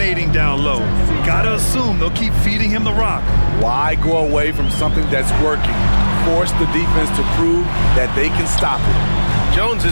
down low. Gotta assume they'll keep feeding him the rock. Why go away from something that's working? Force the defense to prove that they can stop it. Jones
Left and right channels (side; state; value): both; inverted; correlation -1.00